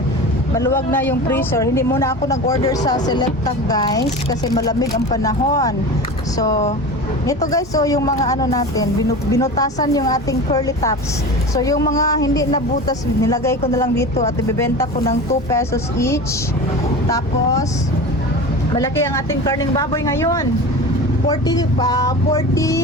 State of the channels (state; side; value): normal; both; correlation 0.31